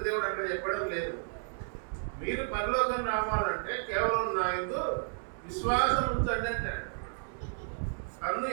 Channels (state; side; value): silent; left; digital silence